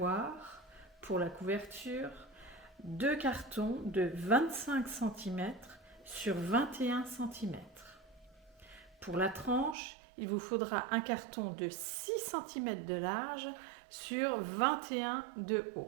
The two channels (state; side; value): drops out; left; at 9.8 s